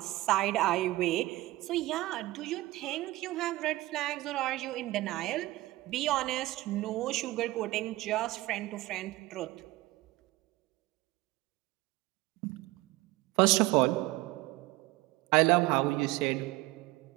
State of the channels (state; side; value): quieter; left; 18.7 dB